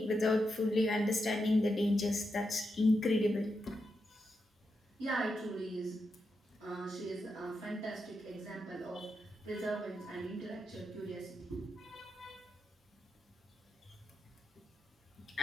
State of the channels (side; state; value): both; normal; correlation 0.86